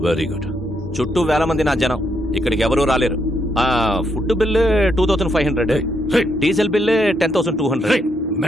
Very good. చుట్టూ వేల మంది నా జనం. ఇక్కడికి ఎవరూ రాలేరు. Food bill 2500, diesel bill 10,200.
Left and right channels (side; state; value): both; normal; correlation 0.77